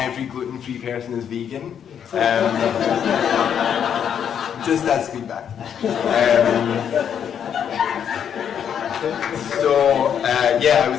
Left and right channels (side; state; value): right; quieter; 8.4 dB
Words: gluten-free person is vegan. Just as feedback. Yeah, I